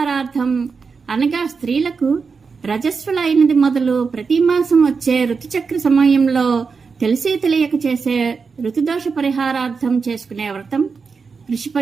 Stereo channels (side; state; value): left; quieter; 5.1 dB